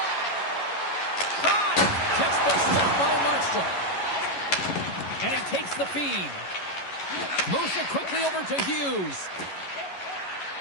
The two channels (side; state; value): right; late; 11 ms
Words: Shot! Textbook stop by Markstrom. And he takes the feed. Moves it quickly over to Hughes.